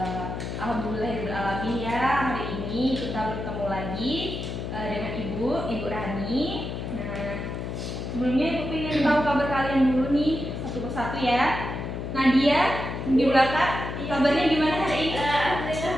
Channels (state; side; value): noise; left; hum, 5 dB below the sound